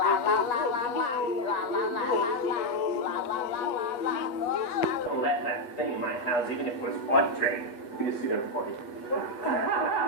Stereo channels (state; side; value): late; right; 8.4 ms